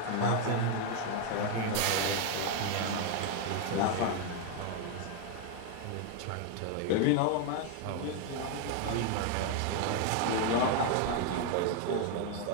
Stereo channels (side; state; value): both; different; correlation 0.01